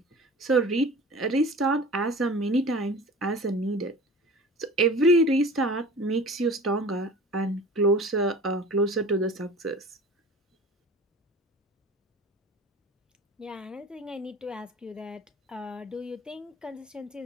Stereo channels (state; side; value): normal; both; correlation 0.40